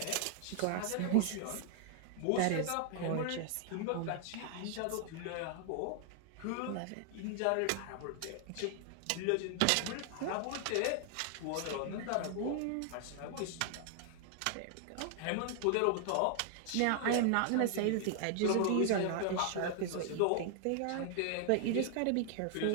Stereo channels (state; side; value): different; both; correlation 0.00